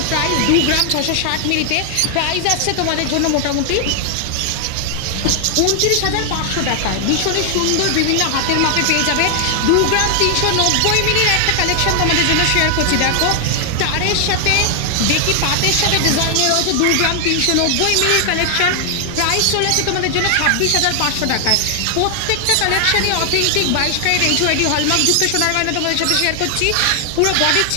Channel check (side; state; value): both; different; correlation 0.00